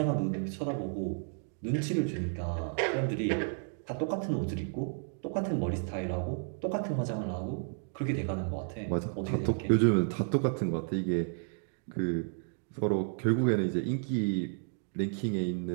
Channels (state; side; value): silent; left; 56 dB below the other